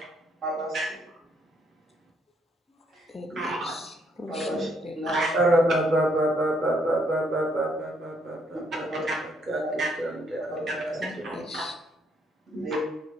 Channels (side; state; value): both; normal; correlation 0.71